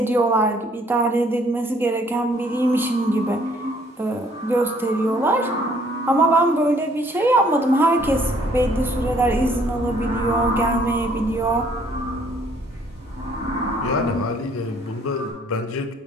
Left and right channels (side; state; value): both; normal; correlation 0.62